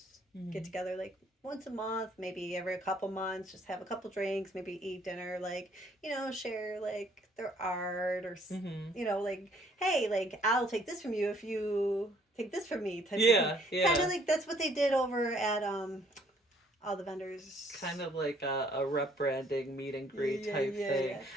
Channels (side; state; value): both; normal; correlation 0.63